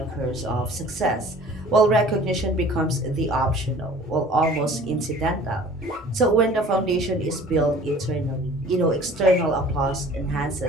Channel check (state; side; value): normal; both; correlation 0.48